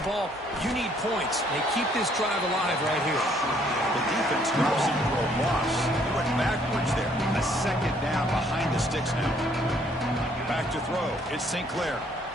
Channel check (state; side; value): normal; both; correlation 0.65